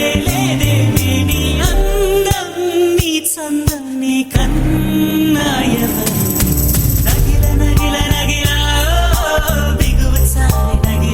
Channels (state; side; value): identical; both; correlation 1.00